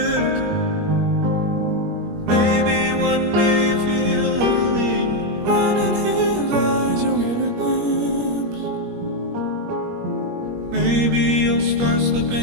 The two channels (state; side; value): late; left; 21 ms